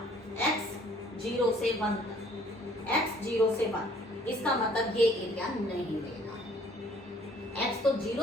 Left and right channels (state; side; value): normal; both; correlation 0.58